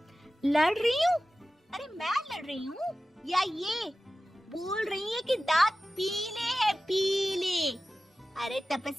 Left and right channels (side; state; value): both; normal; correlation 0.95